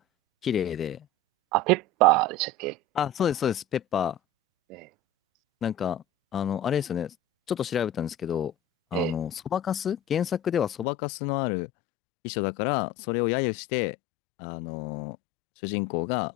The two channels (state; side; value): drops out; right; at 10.9 s